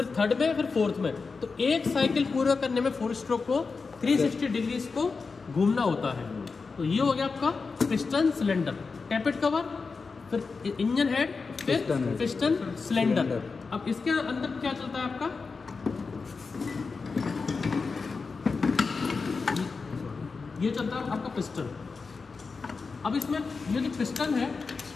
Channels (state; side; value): quieter; right; 4.6 dB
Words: थर्ड में, फिर फोर्थ में। तो एक साइकिल पूरा करने में 4 स्ट्रोक को 360 डिग्री इसको घूमना होता है। तो ये हो गया आपका पिस्टन सिलेंडर, टैपेट कवर, फिर इंजन हेड, फिर पिस्टन सिलेंडर। अब इसके अंदर क्या चलता है आपका, ये चलता है आपका पिस्टन। अब इसमें ये जो पिस्टन है,